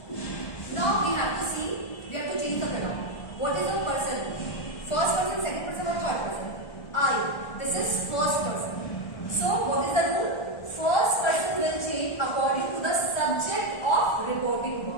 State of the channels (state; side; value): late; right; 1.4 ms